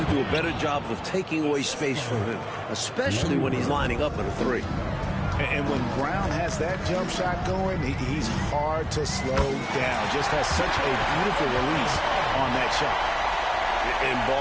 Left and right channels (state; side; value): identical; both; correlation 1.00